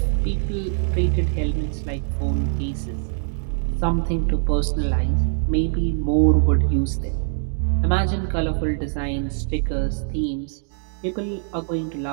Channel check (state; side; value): silent; left; digital silence